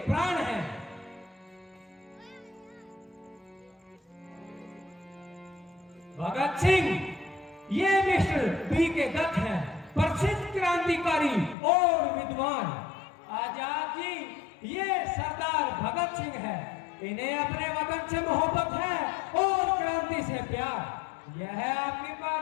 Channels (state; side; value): drops out; right; at 11.6 s